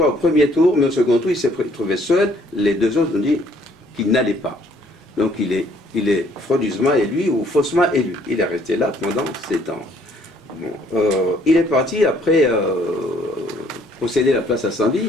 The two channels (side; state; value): both; normal; correlation 0.62